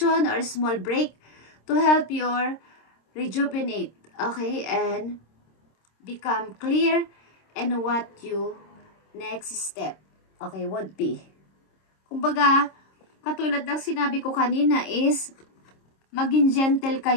or a small break to help your rejuvenate, okay, and become clear in what you next step, okay, would be. Kumbaga, katulad ng sinabi ko kanina is, maging gentle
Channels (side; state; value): right; late; 26 ms